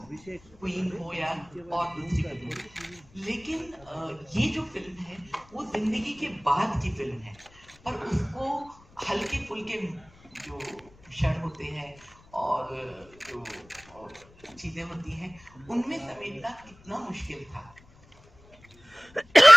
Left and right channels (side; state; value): left; noise; rumble, 26 dB below the sound